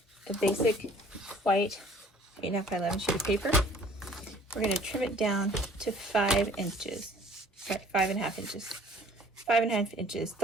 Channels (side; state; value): both; normal; correlation 0.53